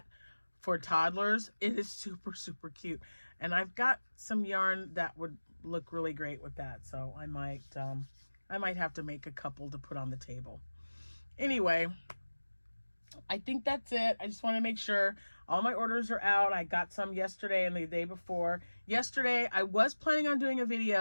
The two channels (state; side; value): inverted; both; correlation -1.00